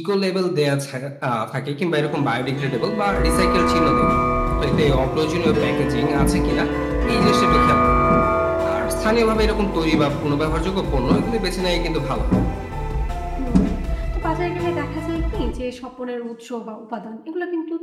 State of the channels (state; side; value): identical; both; correlation 1.00